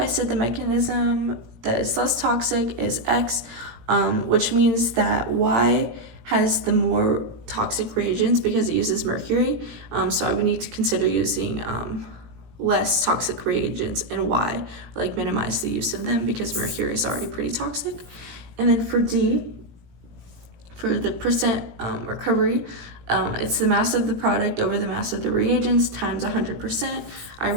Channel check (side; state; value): left; late; 18 ms